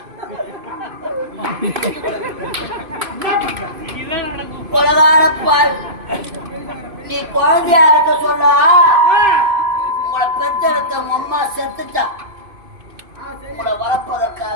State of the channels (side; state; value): left; late; 2.5 ms